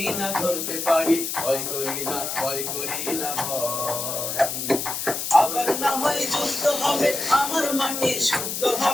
ধরতে পারি ভয় করি না ভয় করি না ভয় আবার না হয় যুদ্ধ হবে আমার মাটি শুদ্ধ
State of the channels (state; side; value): noise; left; hiss, 3 dB below the sound